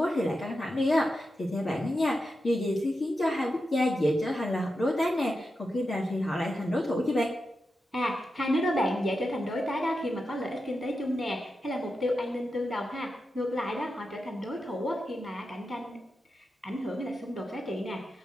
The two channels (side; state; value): both; normal; correlation 0.89